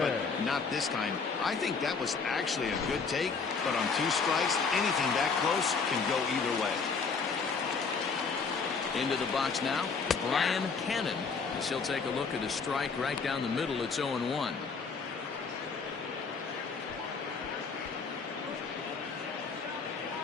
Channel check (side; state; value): right; quieter; 5.0 dB